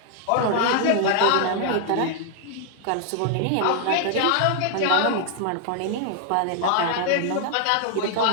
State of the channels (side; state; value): both; different; correlation 0.00